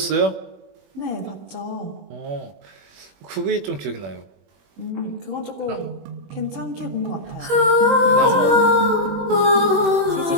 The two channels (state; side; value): late; left; 21 ms